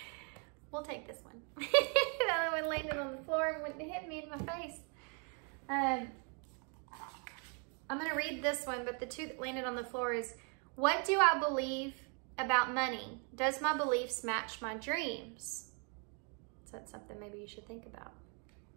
We'll take this one. The other one landed on the floor and went and hit me in my face. I'm going to read this one, but the two that landed on the floor is, what do I believe about money? Does my beliefs match my dreams? So that's something maybe you should think about.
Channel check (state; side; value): quieter; left; 38.2 dB